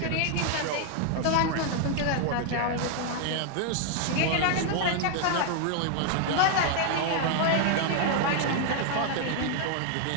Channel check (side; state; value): both; different; correlation 0.00